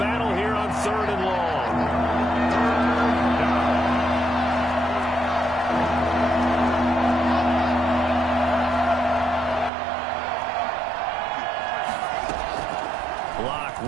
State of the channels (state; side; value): drops out; left; at 9.7 s